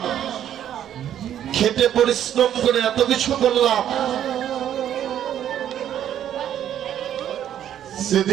খেটে পরিশ্রম করে এত কিছু করলাম,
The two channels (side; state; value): left; quieter; 10.5 dB